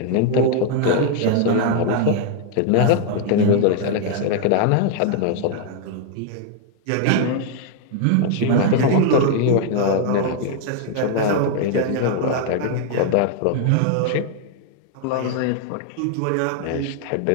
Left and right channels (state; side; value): different; both; correlation 0.00